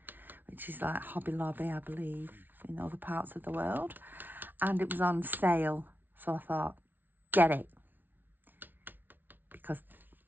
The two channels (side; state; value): left; late; 0.089 ms